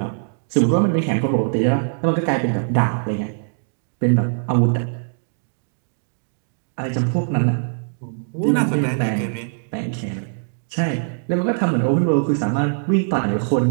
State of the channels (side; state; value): left; silent; digital silence